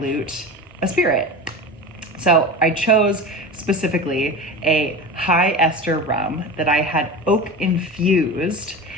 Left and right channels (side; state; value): both; normal; correlation 0.29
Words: a spirit. So I chose specifically a high ester rum that I had oak-infused